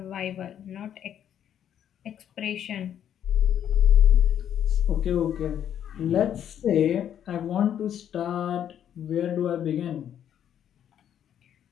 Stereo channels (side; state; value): right; quieter; 9.8 dB